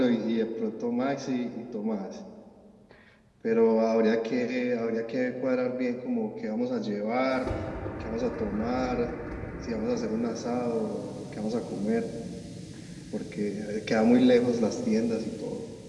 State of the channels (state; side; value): identical; both; correlation 1.00